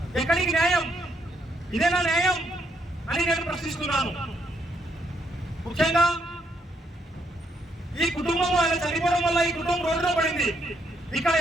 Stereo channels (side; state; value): both; normal; correlation 0.74